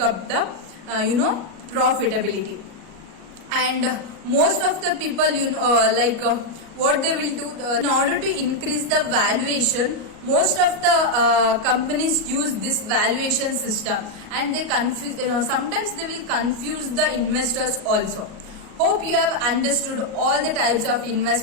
up the profitability. And most of the people what they will do in order to increase the valuation, most of the companies use this valuation system, and they sometimes they will confuse the investors also. Hope you have understood all the types of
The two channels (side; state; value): left; late; 37 ms